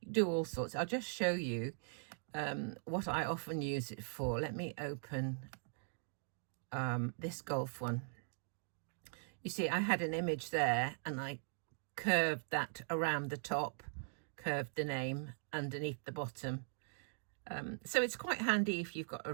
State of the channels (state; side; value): silent; left; digital silence